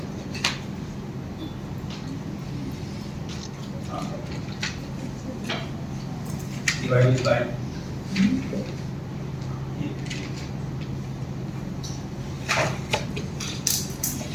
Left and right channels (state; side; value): identical; both; correlation 1.00